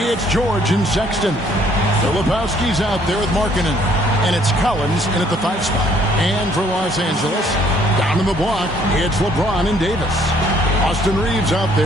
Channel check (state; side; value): normal; both; correlation 0.63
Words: George and Sexton. Filipowski's out there with Markkanen. And it's Collins in at the 5 spot. And for Los Angeles, down in the block, it's LeBron and Davis. Austin Reeves out